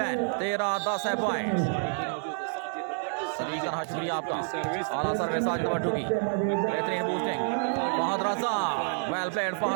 13-10 है पॉइंट। शुक्रिया आपका। आला सर्विस साजिद भट्टू की, बेहतरीन boosting. Fahad Raza, well played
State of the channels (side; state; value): left; silent; 59 dB below the other